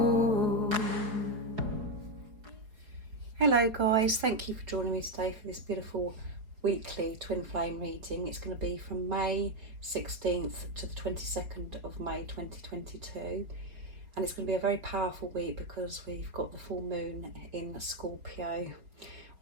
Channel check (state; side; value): late; left; 4.8 ms